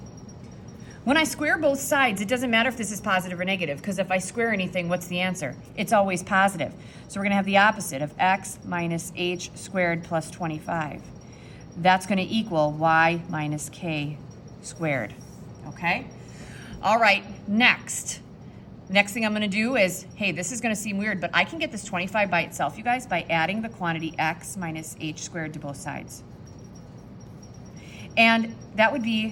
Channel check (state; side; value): identical; both; correlation 1.00